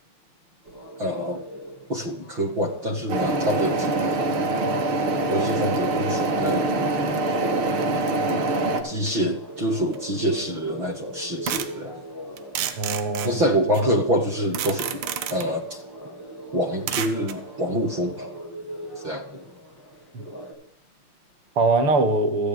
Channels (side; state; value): left; late; 6.7 ms